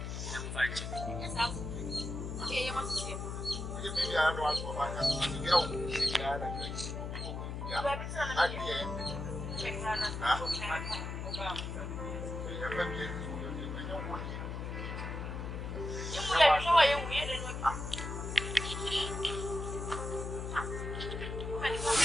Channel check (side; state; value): left; noise; hum, 5 dB below the sound